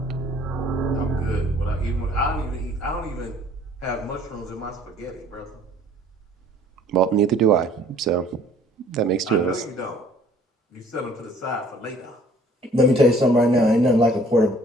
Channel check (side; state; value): both; normal; correlation 0.55